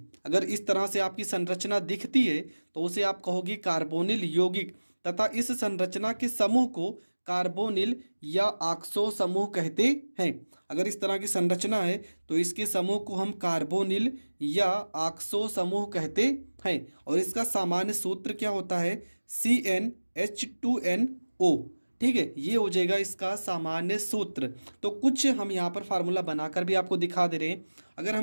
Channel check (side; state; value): both; inverted; correlation -1.00